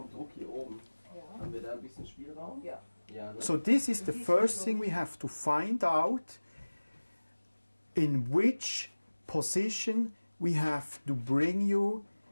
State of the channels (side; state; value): both; inverted; correlation -1.00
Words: Druck hier oben, haben wir da ein bisschen Spielraum? Ja. Ne? So this is the first thing we have to find out, in which position we have to bring you